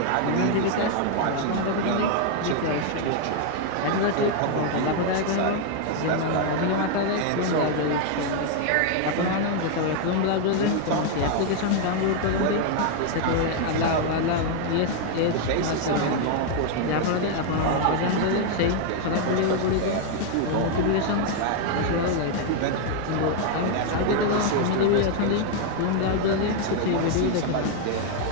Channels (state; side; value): different; both; correlation 0.00